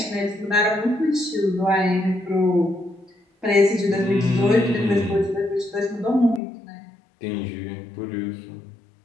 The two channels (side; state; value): right; drops out; at 6.4 s